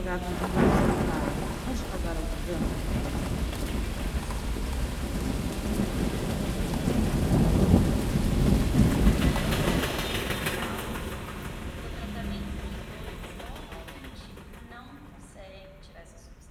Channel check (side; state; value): both; identical; correlation 1.00